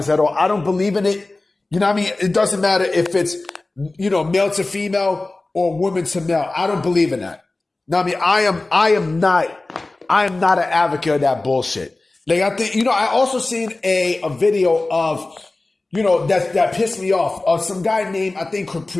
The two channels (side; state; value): right; quieter; 3.1 dB